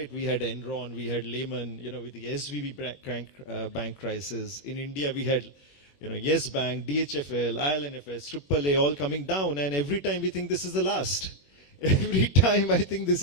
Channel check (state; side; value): late; right; 21 ms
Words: We had Enron, we had Lehman, with the SVB bank crisis. In India, we had, Yes Bank, DHFL, ILNFS, AAA all coming down, and every time we think this is the last. Every time I think this